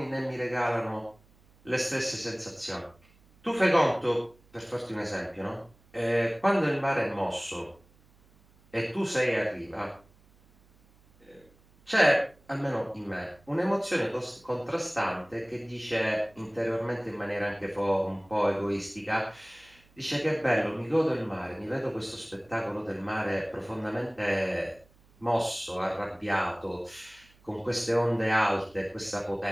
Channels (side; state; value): right; noise; hum, 29 dB below the sound